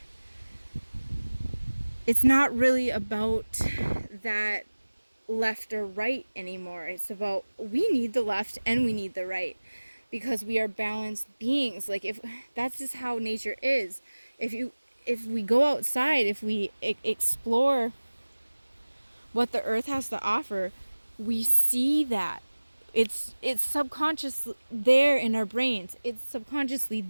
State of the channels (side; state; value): both; inverted; correlation -1.00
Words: it's not really about that left or right anymore. It's about, we need the left and we need the right, because we are balanced beings. Like, if that's just how nature is. If we go outside, if we explore what the earth has to offer, we see that it's subconscious there in our brains. It's subconsciously